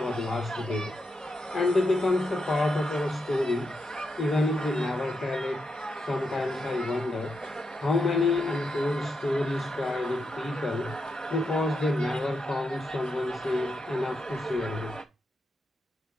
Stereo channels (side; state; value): both; normal; correlation 0.84